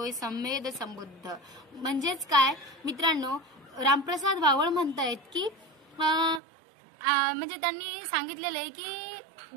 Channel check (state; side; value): drops out; left; at 6.4 s